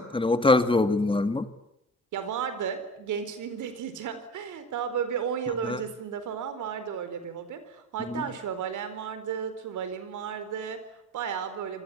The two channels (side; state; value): both; normal; correlation 0.35